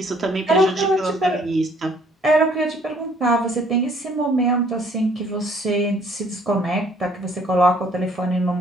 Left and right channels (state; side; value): normal; both; correlation 0.60